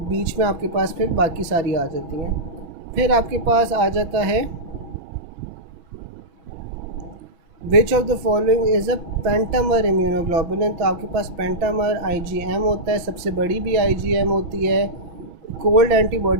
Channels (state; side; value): late; left; 6.1 ms